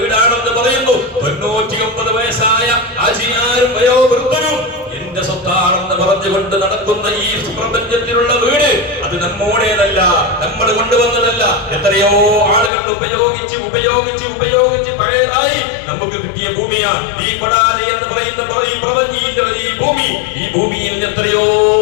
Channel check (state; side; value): drops out; right; at 12.7 s